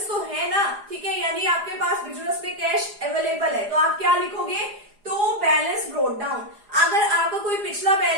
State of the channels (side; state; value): left; late; 4.9 ms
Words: तो है ना, ठीक है, यानी आपके पास बिजनेस में कैश अवेलेबल है, तो आप क्या लिखोगे, टू बैलेंस ब्रोट डाउन। अगर आपका कोई पिछला